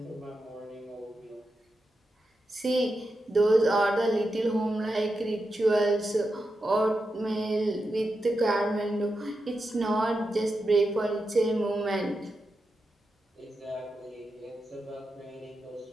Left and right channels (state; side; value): normal; both; correlation 0.88